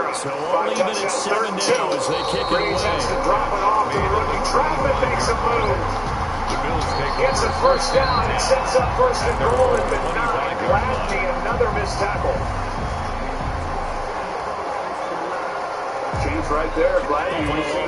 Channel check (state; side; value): identical; both; correlation 1.00